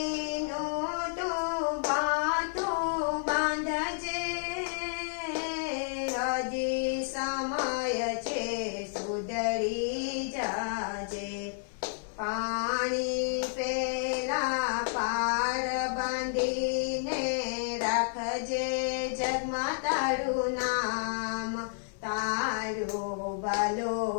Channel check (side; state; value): right; silent; digital silence